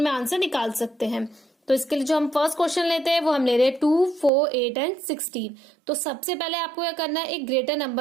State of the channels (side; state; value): left; drops out; at 4.3 s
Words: में आंसर निकाल सकते हैं। तो इसके लिए जो हम फर्स्ट क्वेश्चन लेते हैं वो हम ले रहे हैं 2, 4, 8 एंड 16। तो सबसे पहले आपको क्या करना है, एक ग्रेटर